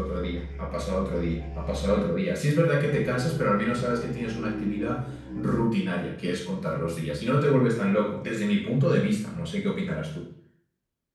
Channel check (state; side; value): identical; both; correlation 1.00